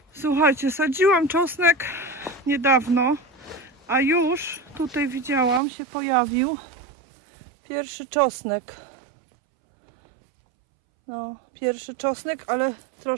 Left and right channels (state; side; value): drops out; left; at 5.6 s